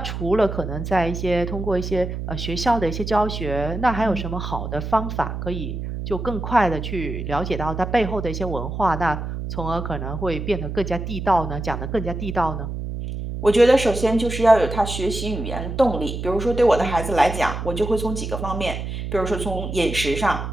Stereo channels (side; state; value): right; noise; hum, 5 dB below the sound